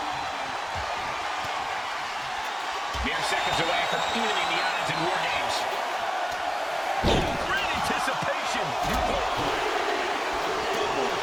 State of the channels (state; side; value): identical; both; correlation 1.00